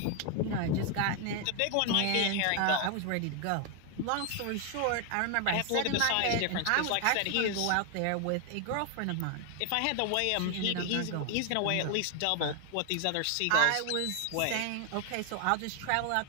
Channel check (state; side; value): different; both; correlation 0.00